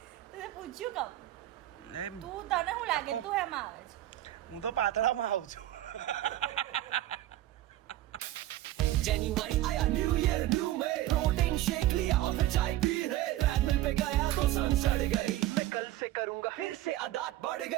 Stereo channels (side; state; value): left; quieter; 14.6 dB